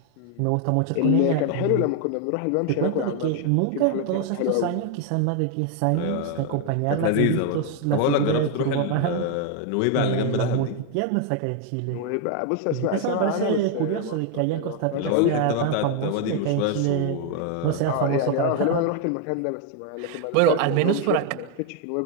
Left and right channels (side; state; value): both; different; correlation 0.00